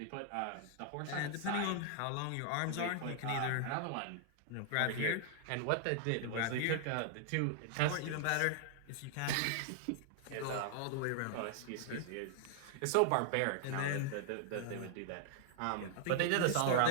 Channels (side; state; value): both; different; correlation 0.00